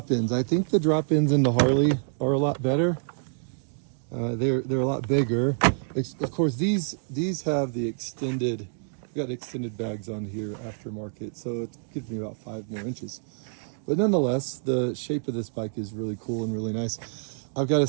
I think the drop-ins in the Harley are a lot better. They're a lot bigger. Of course, these have the extended, got extended bags on here aftermarket, so it gives me about 5 more inches. But nonetheless, the shape of this bike is really cool and really nice. I've got to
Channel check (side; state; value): left; silent; digital silence